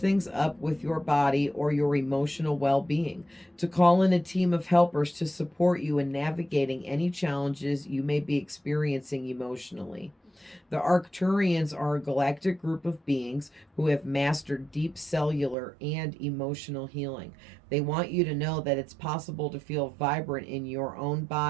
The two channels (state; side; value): drops out; left; at 15.6 s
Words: up with your body or your emotional well-being, to call in a team of helpers to support you in navigating any challenges you may be experiencing emotionally. The Arcturians are a galactic group of beings who have mastered deep cellular and emotional healing. They want you to know that it's possible to feel vibrant in your own